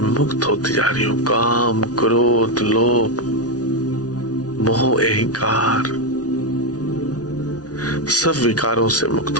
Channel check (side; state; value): right; late; 0.68 ms